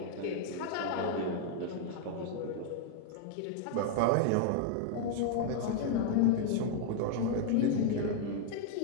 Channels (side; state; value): both; different; correlation -0.01